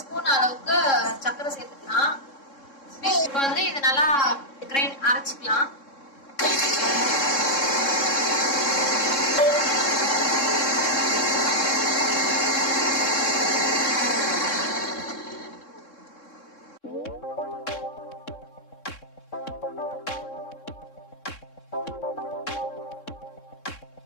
அளவுக்கு சர்க்கரை சேர்த்துக்கலாம். இப்போ வந்து இது நல்லா கிரைண்ட் அரைச்சிக்கலாம்.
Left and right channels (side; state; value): right; late; 3.7 ms